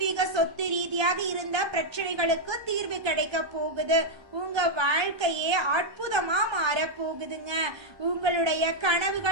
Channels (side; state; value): left; late; 1.2 ms